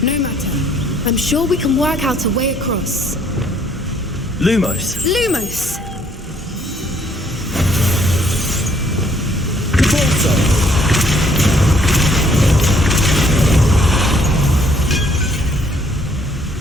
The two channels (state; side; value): normal; both; correlation 0.65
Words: No matter. I'm sure we can work out a way across. Lumos. Lumos!